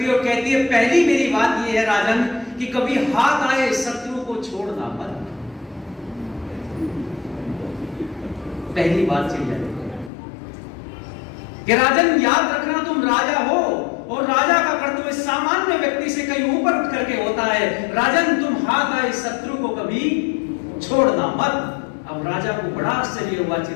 है और कहती है, पहली मेरी बात ये है राजन कि कभी हाथ आए शत्रु को छोड़ना मत। पहली बात चिड़िया कि राजन याद रखना तुम राजा हो और राजा का कर्तव्य सामान्य व्यक्ति से कहीं ऊपर उठ करके होता है। राजन तुम हाथ आए शत्रु को कभी छोड़ना मत। अब राजा को बड़ा आश्चर्य हुआ,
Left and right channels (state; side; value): drops out; right; at 10.1 s